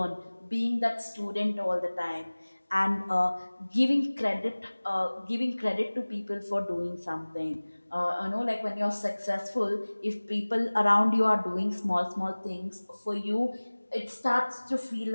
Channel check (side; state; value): both; inverted; correlation -1.00